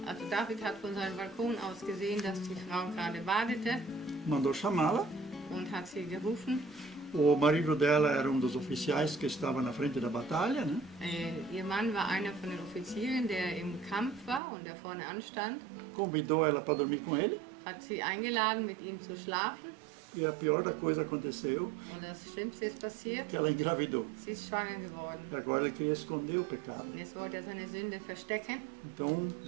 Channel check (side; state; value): left; drops out; at 14.4 s